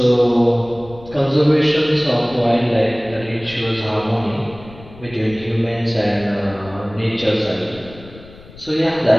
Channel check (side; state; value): left; noise; rumble, 19 dB below the sound